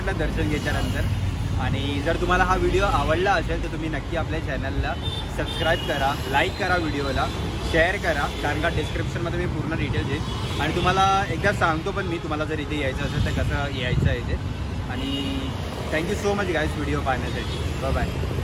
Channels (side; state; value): both; identical; correlation 1.00